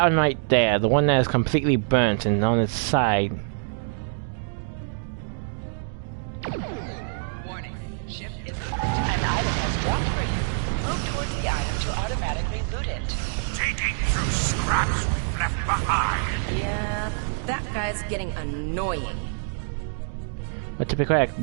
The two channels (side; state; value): left; silent; digital silence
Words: one right there, the one that is completely burnt and on its side. Warning, ship is burnt. An item has dropped for you. Move towards the item to automatically loot it. Digging through scraps we've left behind. Yeah, that guy's getting annoying. But to be correct,